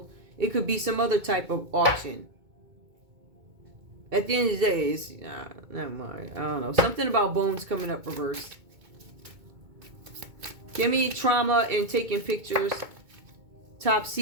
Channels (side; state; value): left; late; 2.2 ms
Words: It could be some other type of auction. At the end of the day, it's, never mind. I don't know. Something about bones coming up reversed. Give me trauma and taking pictures. Top